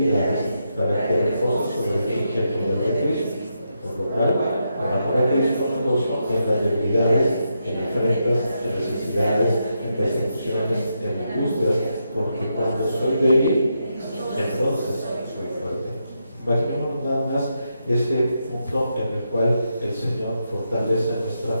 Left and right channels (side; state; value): both; inverted; correlation -0.83